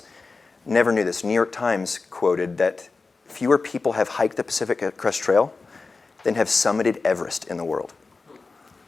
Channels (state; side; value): quieter; right; 4.1 dB